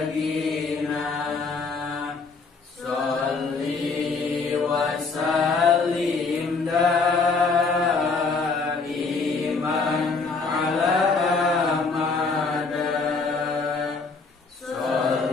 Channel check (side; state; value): right; quieter; 4.3 dB